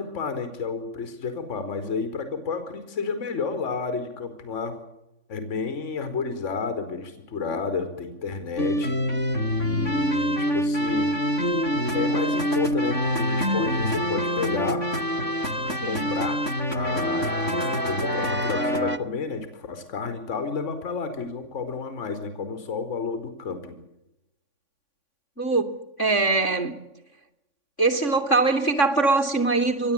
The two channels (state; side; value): late; right; 3.5 ms